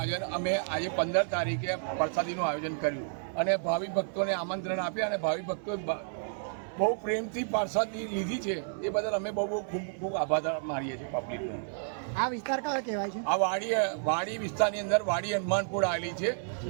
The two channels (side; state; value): left; silent; 57 dB below the other